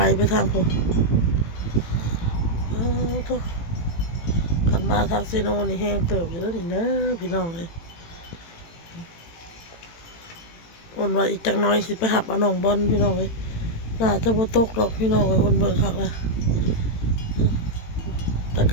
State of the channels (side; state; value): right; late; 18 ms